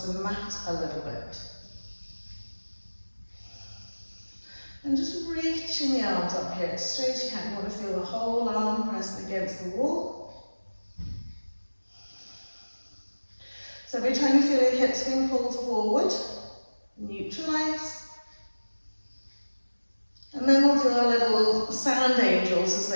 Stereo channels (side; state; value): both; inverted; correlation -1.00